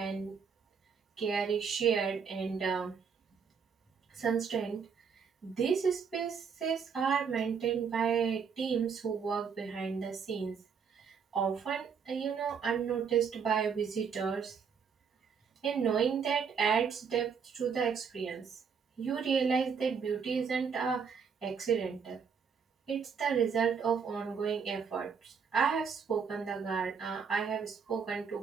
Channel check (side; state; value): left; quieter; 6.3 dB